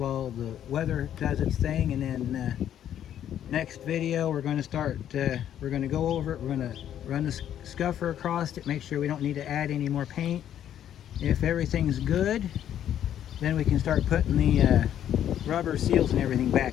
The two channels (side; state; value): right; quieter; 10.4 dB